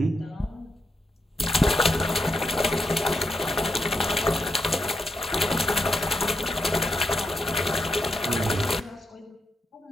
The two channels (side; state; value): both; normal; correlation 0.82